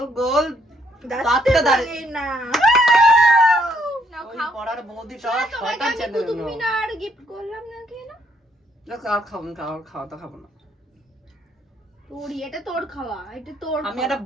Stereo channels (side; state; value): both; normal; correlation 0.70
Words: গোল দাঁতটা দাঁড়িয়ে না ওই খাও। পড়ার বৌদিটা তোমাকে আমি কুতুব মিনার গিফট করলাম না কেন? আর খাবো না, খাওয়া তো খাবো না। তোরই, এটা তোর খাওয়া, এটা তোর আমি খাওয়া। একটা